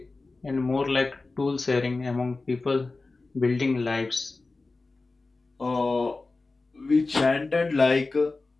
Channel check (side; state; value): right; quieter; 3.5 dB